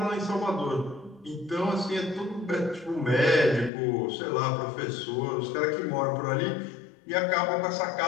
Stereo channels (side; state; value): right; drops out; at 3.7 s